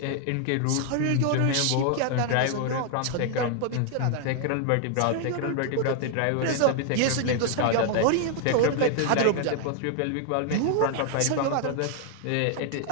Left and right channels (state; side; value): different; both; correlation 0.00